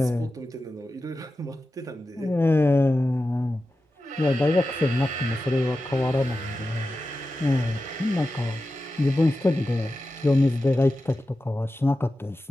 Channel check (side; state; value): both; normal; correlation 0.93